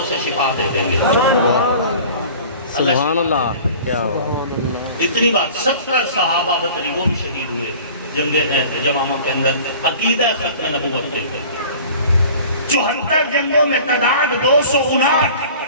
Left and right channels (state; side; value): inverted; both; correlation -0.44